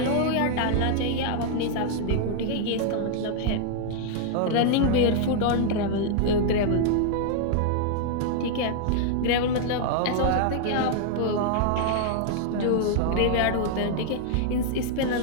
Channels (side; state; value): both; different; correlation 0.00